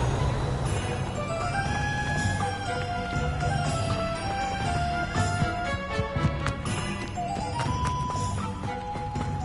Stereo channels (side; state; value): both; identical; correlation 1.00